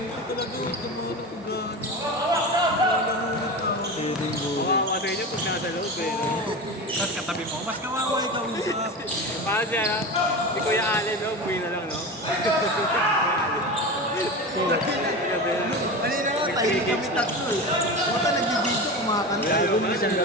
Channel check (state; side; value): normal; both; correlation 0.27